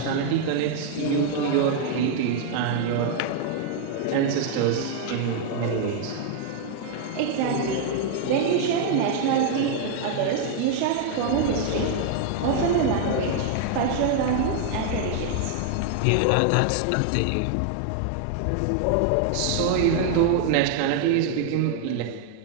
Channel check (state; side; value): different; both; correlation 0.00